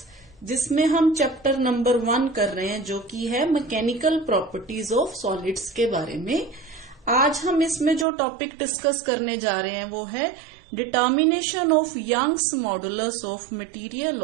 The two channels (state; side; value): drops out; left; at 8.1 s